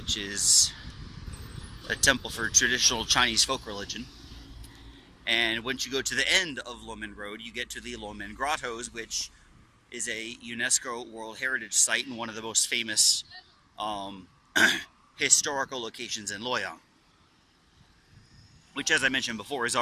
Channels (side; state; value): both; identical; correlation 1.00